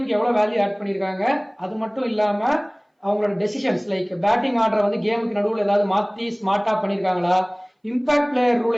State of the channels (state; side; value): identical; both; correlation 1.00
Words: எவ்வளவு வேல்யூ ஆட் பண்ணிருக்காங்க, அது மட்டும் இல்லாம அவங்களோட டெசிஷன்ஸ் லைக் பேட்டிங் ஆர்டர் வந்து கேமுக்கு நடுவுல ஏதாவது மாத்தி ஸ்மார்ட்டா பண்ணிருக்காங்களா, இம்பாக்ட் பிளேயர்